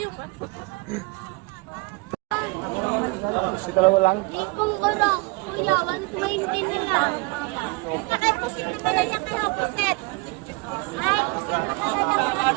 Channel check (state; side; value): quieter; left; 27.0 dB